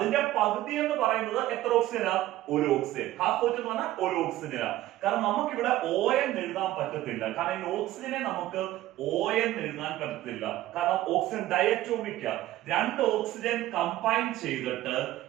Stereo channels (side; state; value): left; quieter; 15.2 dB